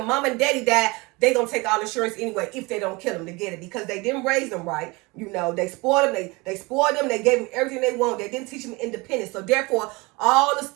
mom and daddy die, they gonna take all insurance anyway if they don't kill them to get it, because they didn't raise them right. They spoiled them. They spoiled them. They gave them everything they want. They didn't teach them independence. So therefore, all the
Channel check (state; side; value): quieter; left; 25.1 dB